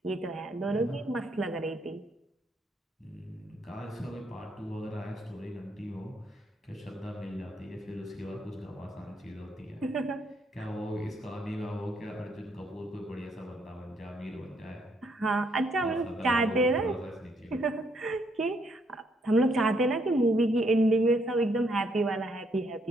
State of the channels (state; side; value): normal; both; correlation 0.72